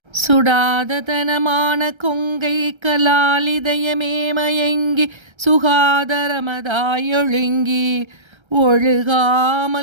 சுடாத தனமான கொங்கை கலாலிதயமே மயங்கி சுகாதரமதாயொழுங்கி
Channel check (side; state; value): left; late; 1.3 ms